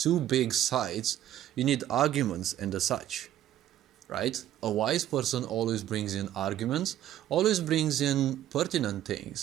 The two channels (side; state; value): left; quieter; 12.3 dB